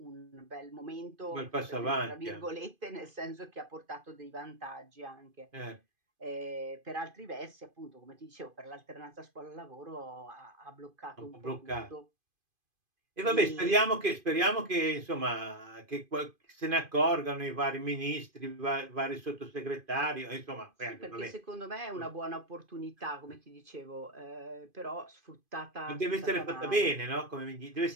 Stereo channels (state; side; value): late; left; 2.5 ms